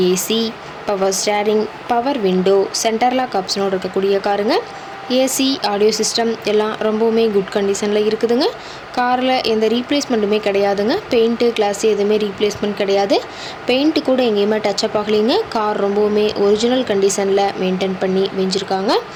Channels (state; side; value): identical; both; correlation 1.00